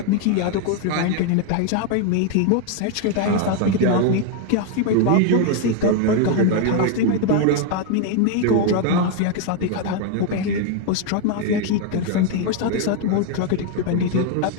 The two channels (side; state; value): both; different; correlation 0.01